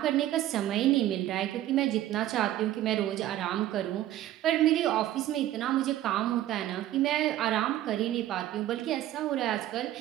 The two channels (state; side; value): quieter; left; 13.5 dB